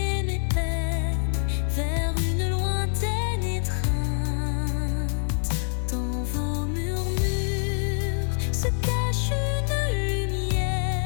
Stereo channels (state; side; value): silent; right; digital silence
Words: mes peines vers une lointaine étreinte. Dans vos murmures se cache une